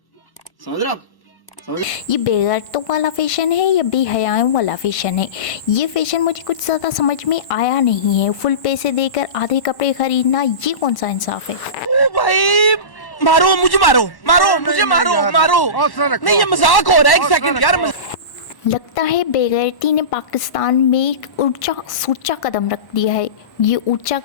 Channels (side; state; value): right; late; 1.1 ms